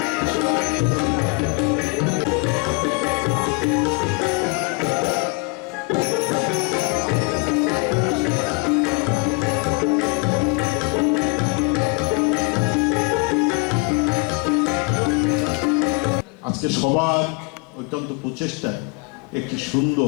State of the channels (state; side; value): quieter; right; 28.6 dB